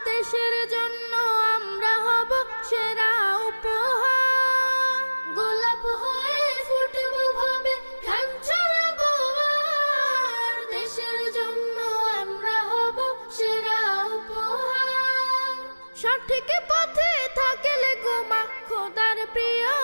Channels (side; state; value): both; inverted; correlation -1.00